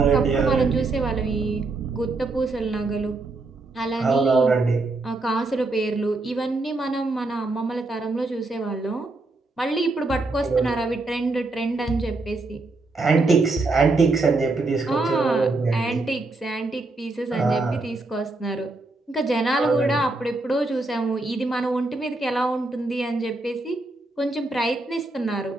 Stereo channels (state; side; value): quieter; left; 3.2 dB